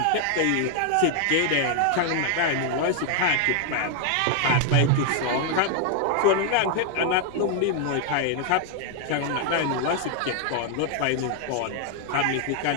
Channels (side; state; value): both; different; correlation 0.00